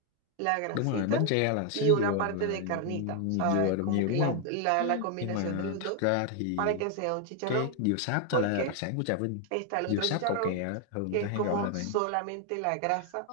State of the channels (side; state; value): both; different; correlation 0.01